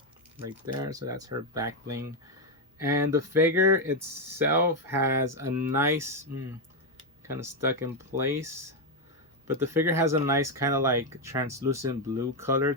right there. So that's her back bling. And the figure itself has a nice kind of stuck in place, but the figure has a nice kind of like translucent blue color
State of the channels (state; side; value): normal; both; correlation 0.05